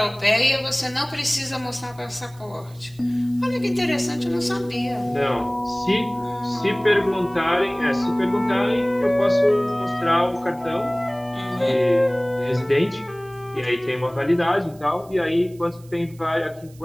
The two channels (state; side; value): noise; right; hiss, 27 dB below the sound